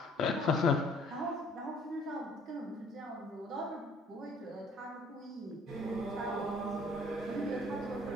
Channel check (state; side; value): normal; both; correlation 0.58